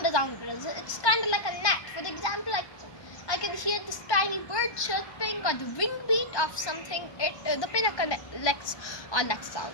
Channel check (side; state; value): right; late; 1.2 ms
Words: around us. It's kind of like a net. For example, I can hear this tiny bird chirping or the wing beat of something. The pinna collects all that sound.